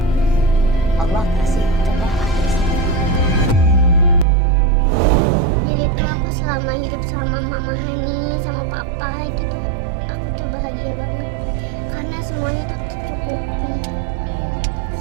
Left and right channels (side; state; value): left; drops out; at 4.2 s